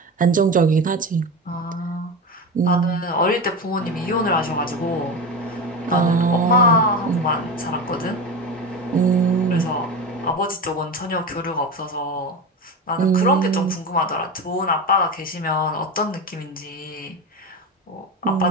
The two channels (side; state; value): both; normal; correlation 0.24